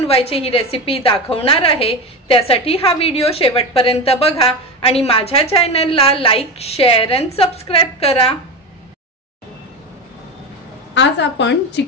ही रेसिपी दाखवणार आहे। त्यासाठी हा व्हिडिओ शेवटपर्यंत बघा आणि माझ्या चॅनलला लाईक, शेअर आणि सबस्क्राइब करा। आज आपण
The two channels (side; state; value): both; normal; correlation 0.21